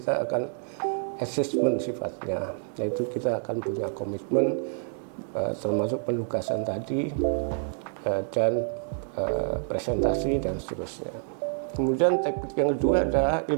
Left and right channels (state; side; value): silent; left; digital silence